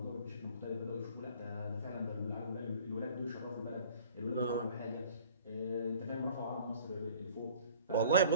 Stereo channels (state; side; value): inverted; both; correlation -0.50